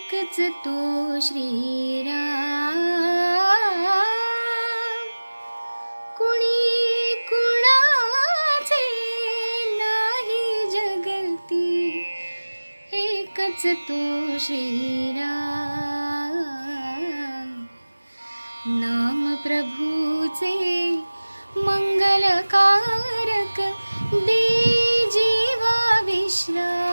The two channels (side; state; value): both; inverted; correlation -1.00